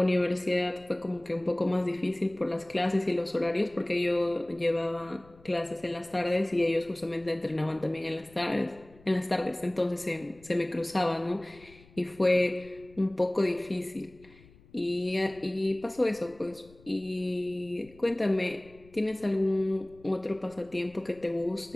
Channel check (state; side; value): noise; left; rumble, 25 dB below the sound